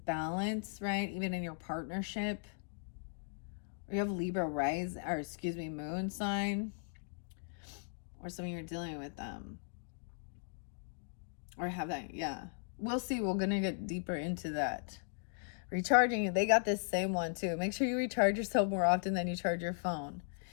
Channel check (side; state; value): right; silent; digital silence